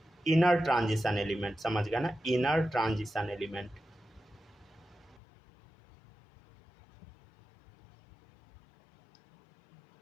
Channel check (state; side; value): drops out; right; at 5.2 s